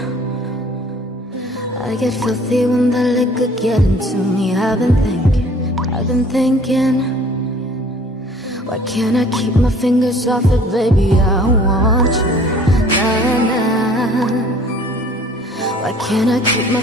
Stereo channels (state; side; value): normal; both; correlation 0.53